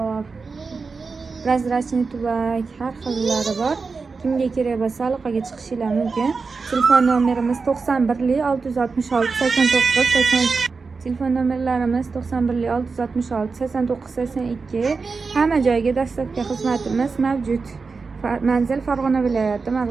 Prozrachniy tubak, har xillari bor. Kimga kerak bo'lsa aloqaga chiqishingiz mumkin. Telefon nomerimiz 91 666 89 80. Telefon nomerlarimiz 91 666 89 82. Hamma joyga dastlabki xizmatimiz mavjud. Manzil Farg'ona viloyati,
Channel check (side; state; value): left; quieter; 4.6 dB